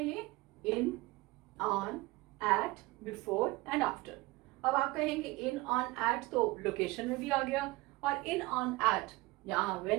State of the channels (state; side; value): quieter; left; 21.8 dB